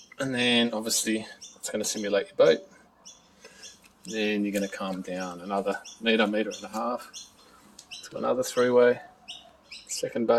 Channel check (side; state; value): both; identical; correlation 1.00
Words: and then obviously it's going to simulate your boat. Then you're going to come down another meter and a half to another 3-way, second